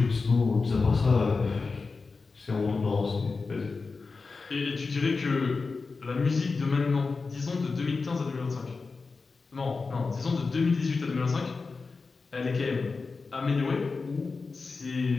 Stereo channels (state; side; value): quieter; right; 4.3 dB